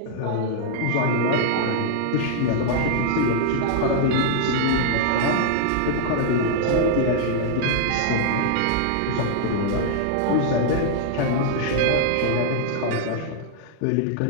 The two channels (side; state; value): both; different; correlation -0.01